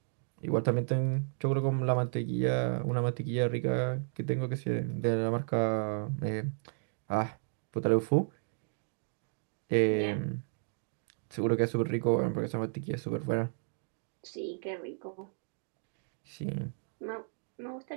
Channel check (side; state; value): left; silent; digital silence